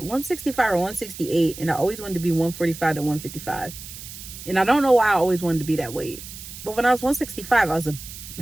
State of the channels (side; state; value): right; noise; hiss, 13 dB below the sound